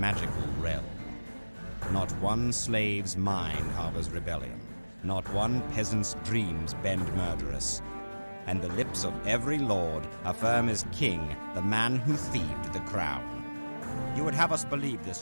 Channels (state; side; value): inverted; both; correlation -1.00